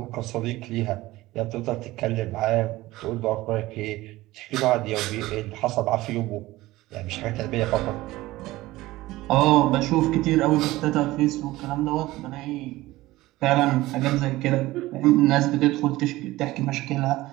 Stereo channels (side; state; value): left; quieter; 18.1 dB